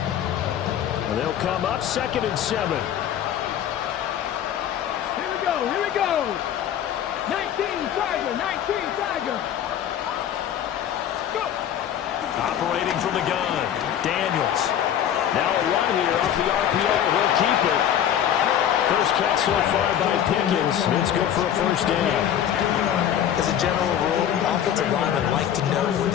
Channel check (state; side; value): quieter; right; 10.1 dB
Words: And they'll come up 2nd and 7. Here we go. 19 Tiger. Go. Operating from the gun, Daniels. Now a run here off the RPO. He'll keep it. First catch so far by Pickens. It's good for a 1st down. As a general rule, offensive linemen like to know where